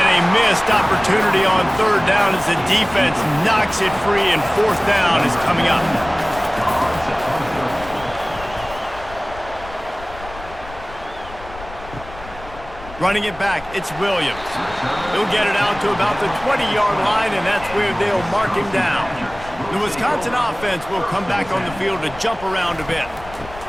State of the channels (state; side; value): noise; left; rumble, 16 dB below the sound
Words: a missed opportunity on third down as the defense knocks it free, and fourth down is coming up. Running it back, it's Williams. He'll get it out to about the 20-yard line, and that's where they'll mark him down. The Wisconsin offense will come back on the field to jump around a bit.